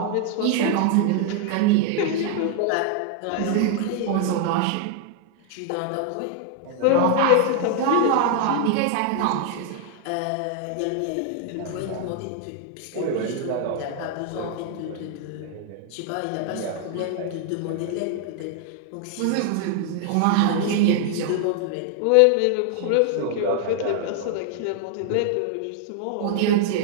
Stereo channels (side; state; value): both; different; correlation 0.00